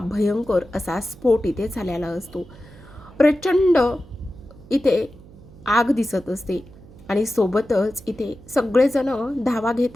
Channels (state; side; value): noise; right; hum, 21 dB below the sound